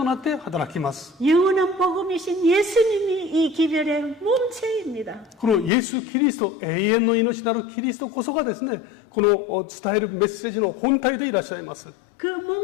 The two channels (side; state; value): right; drops out; at 5.7 s